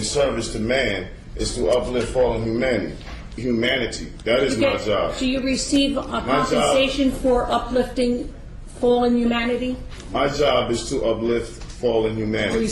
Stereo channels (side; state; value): both; identical; correlation 1.00